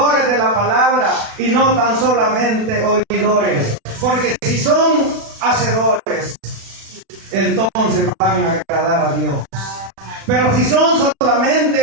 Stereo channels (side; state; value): left; late; 36 ms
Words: de la palabra y no tan solamente oidores. Porque si son hacedores, entonces van a agradar a Dios. Pero si son